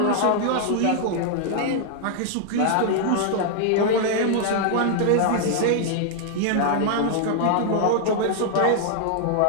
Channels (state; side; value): different; both; correlation 0.00